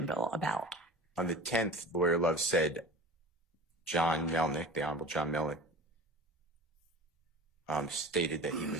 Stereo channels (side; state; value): both; normal; correlation 0.36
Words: about. On the 10th, Lawyer Love said John Melnick, the Honorable John Melnick, stated that he